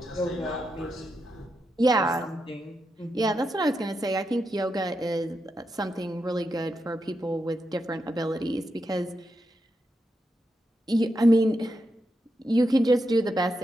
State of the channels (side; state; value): both; normal; correlation 0.85